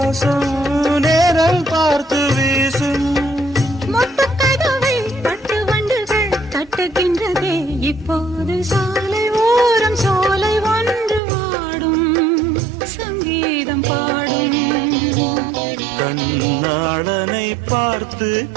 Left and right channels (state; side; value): drops out; left; at 11.2 s